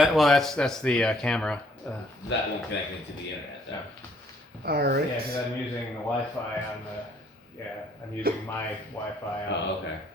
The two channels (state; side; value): normal; both; correlation 0.64